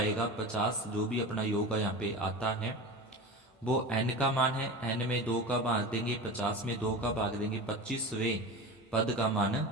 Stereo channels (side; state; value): both; normal; correlation 0.30